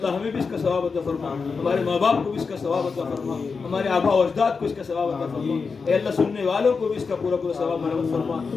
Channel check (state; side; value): quieter; right; 5.0 dB